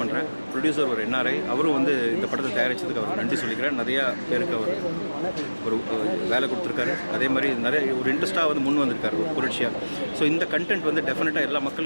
பண்ணுறேன். ப்ரொடியூசர் ஒரு NRI, அவரும் வந்து இந்த படத்தை தயாரித்ததுக்கு அவர் நன்றி சொல்லிக்கிறேன். நிறையா பேருக்கு அவர் ஒரு வேலை கொடுத்துருக்காரு. அதே மாதிரி நிறைய ஒரு இன்ட்ரெஸ்ட்டாக வந்து முன் வந்திருக்காரு ஒரு புரட்சியாக. ஸோ இந்த கண்டென்ட் வந்து டெஃபினட்டாக எல்லா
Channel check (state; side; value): inverted; both; correlation -1.00